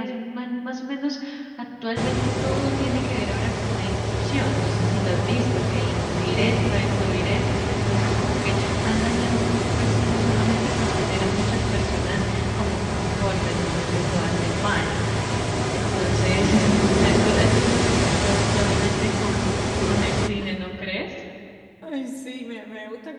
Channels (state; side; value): identical; both; correlation 1.00